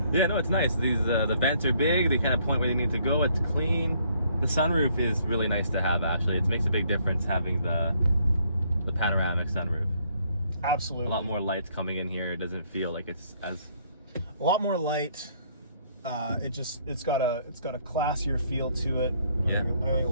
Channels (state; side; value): inverted; both; correlation -0.67